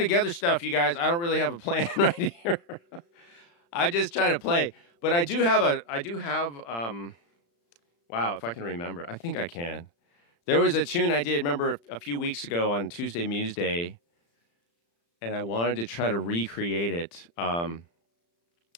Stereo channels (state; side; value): late; right; 35 ms